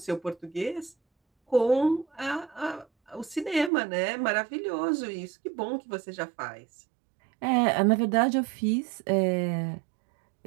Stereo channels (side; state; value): left; drops out; at 3.7 s